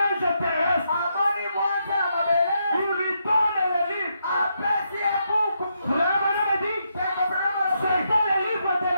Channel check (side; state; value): both; inverted; correlation -0.80